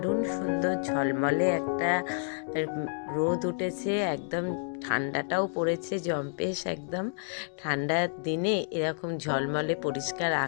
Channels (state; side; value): silent; right; digital silence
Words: সুন্দর ঝলমলে একটা রোদ উঠেছে, একদম ঠান্ডাটাও পড়েছে জম্পেশ। একদম ঠান্ডার দিনে এরকম ঝলমলে পরিষ্কার